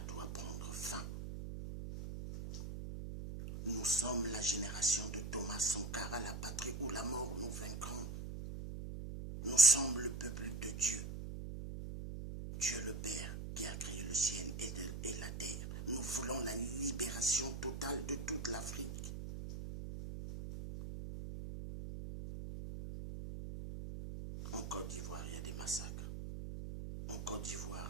doit prendre fin. Nous sommes la génération de Thomas Sankara, la patrie ou la mort, nous vaincrons. Nous sommes le peuple de Dieu. Dieu le Père qui a créé le ciel et la terre. Nous voulons la libération totale de toute l'Afrique. En Côte d'Ivoire, il y a des massacres. En Côte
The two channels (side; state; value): right; noise; hum, 6 dB below the sound